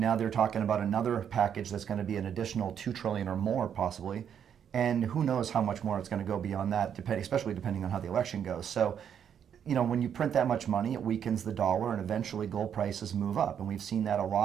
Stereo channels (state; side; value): quieter; left; 8.5 dB